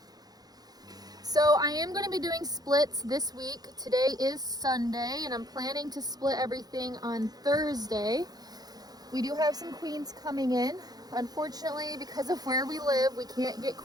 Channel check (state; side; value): late; left; 0.19 ms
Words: So I am going to be doing splits this week. Today is Sunday, and I'm planning to split everything on Thursday. We do have some queens coming in. Unfortunately, because of where we live, we can't get